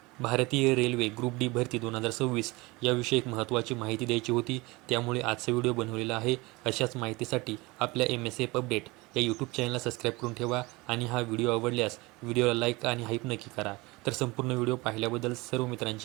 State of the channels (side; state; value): left; quieter; 23.3 dB